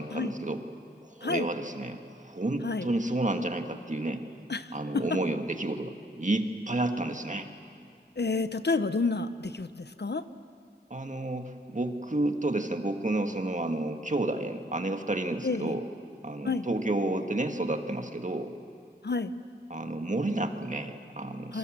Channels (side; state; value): both; normal; correlation 0.62